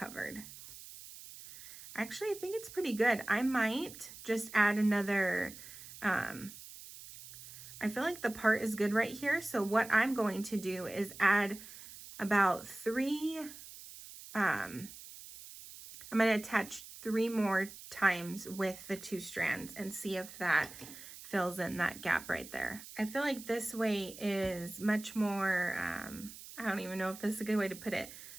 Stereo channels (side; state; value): right; noise; hiss, 15 dB below the sound